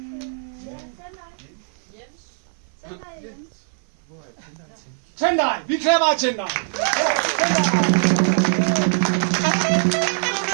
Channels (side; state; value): left; silent; 58 dB below the other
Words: Tendai, vi klapper af Tendai.